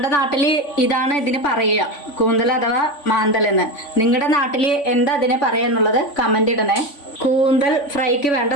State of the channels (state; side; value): late; right; 3.5 ms